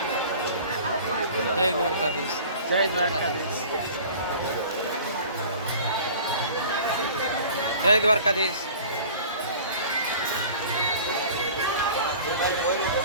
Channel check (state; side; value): inverted; both; correlation -0.43